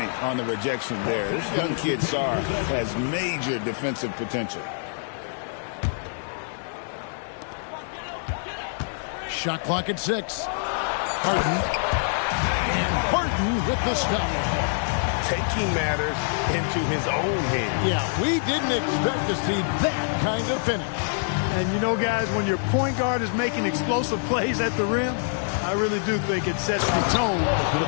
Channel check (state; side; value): silent; right; 61 dB below the other